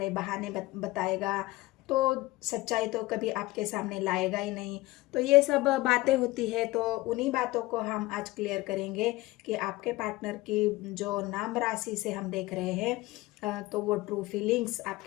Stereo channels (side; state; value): right; quieter; 19.6 dB